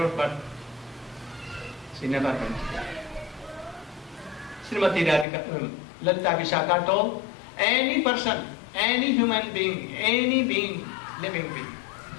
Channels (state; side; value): drops out; right; at 5.2 s